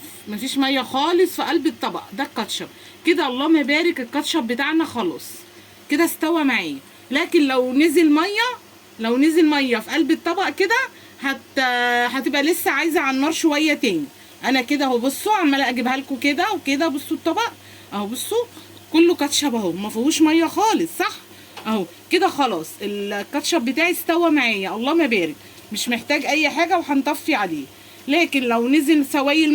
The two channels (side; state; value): both; identical; correlation 1.00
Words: مفيش ميه خالص في قلب الطبق ده الكاتشب كده. اللهم بارك الكاتشب بتاعنا خلاص كده استوى معايا. لكن لو نزل ميه في قلب الطبق كده هتبقى لسه عايزه على النار شويه تاني. انا كده اهو بصوا عماله اجيبها لكم كده وكده. بصوا الطبق اهو بصوا كله كاتشب اهو ما فيهوش ميه خالص صح اهو كده. خلاص الكاتشب بتاعي استوى معايا اللهم بارك، مش محتاج اي حاجه وهنطفي عليه. لكن لو نزل سوائل